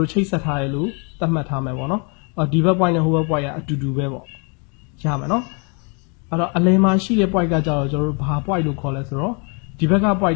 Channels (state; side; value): quieter; right; 35.8 dB